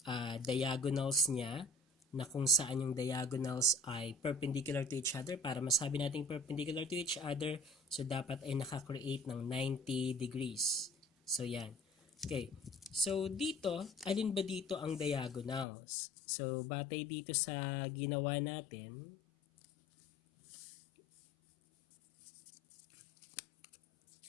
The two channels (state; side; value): drops out; right; at 15.7 s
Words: diagonals niya, na kung saan yung diagonals ay perpendicular to each other. Para masabi natin perpendicular to each other, so dapat ay nakakreate ng 90 degrees. So yan. Okay, so dito, alin ba dito ang diagonals? So batay dito sa ginawa natin,